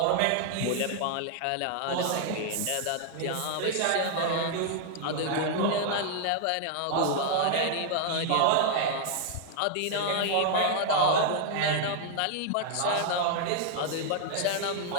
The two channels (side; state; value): both; different; correlation 0.00